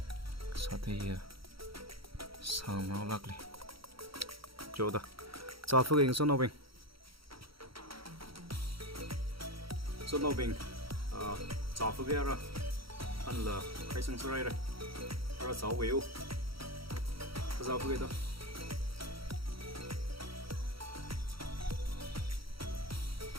sang nó lắc đi chỗ đó cho phước hình số nào bình cho phước ra anh là khai sang số này rồi rồi sáu biểu cho phước đó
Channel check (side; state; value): left; late; 0.75 ms